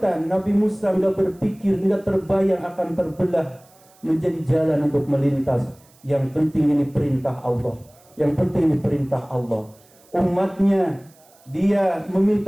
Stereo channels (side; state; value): right; noise; hiss, 29 dB below the sound